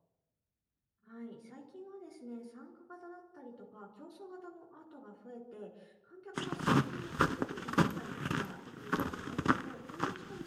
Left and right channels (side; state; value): both; identical; correlation 1.00